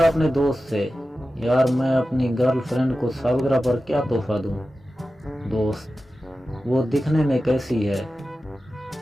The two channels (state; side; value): normal; both; correlation 0.94